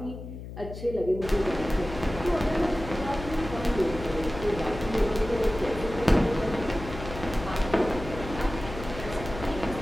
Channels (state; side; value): noise; left; hum, 11 dB below the sound